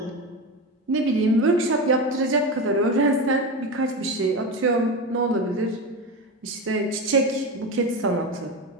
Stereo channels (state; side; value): normal; both; correlation 0.20